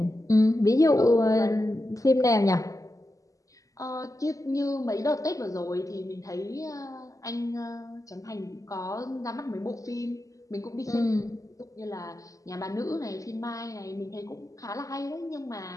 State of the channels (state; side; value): late; right; 0.16 ms